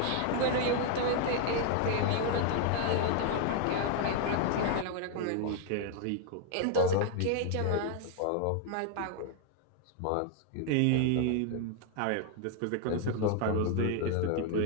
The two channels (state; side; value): different; both; correlation 0.00